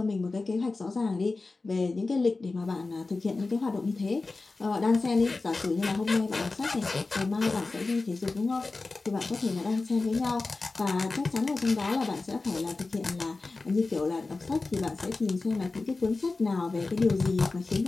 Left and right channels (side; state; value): right; quieter; 3.6 dB